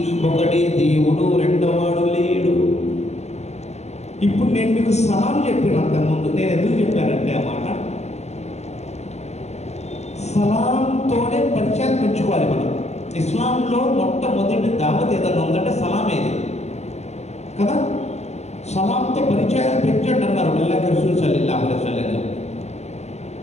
ఒకడే దేవుడు, రెండవాడు లేడు. ఇప్పుడు నేను మీకు సలాం చెప్పినంత ముందు నేను ఎందుకు చెప్పానంటే ఆ మాట, సలాంతోనే పరిచయం పెంచుకోవాలి మనం. ఇస్లాంలో మొట్టమొదటి దావత్ ఏదన్నా ఉందంటే సలామేది కదా. సలాంతో పరిచయాలు పెంచండి అన్నారు అల్లాహ్ రసూల్ సల్లల్లాహు అలైహి వసల్లం.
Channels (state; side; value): late; right; 0.32 ms